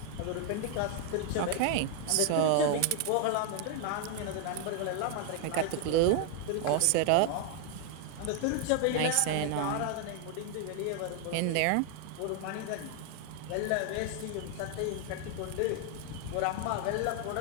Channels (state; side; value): different; both; correlation 0.00